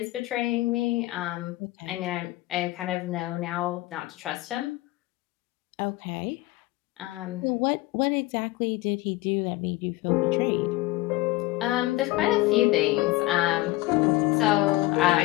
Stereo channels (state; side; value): quieter; right; 18.8 dB